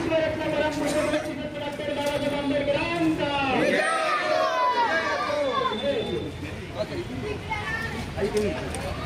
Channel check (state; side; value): identical; both; correlation 1.00